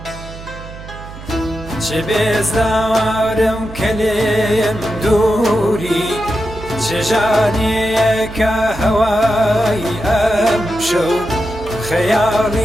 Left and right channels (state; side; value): noise; right; hum, 14 dB below the sound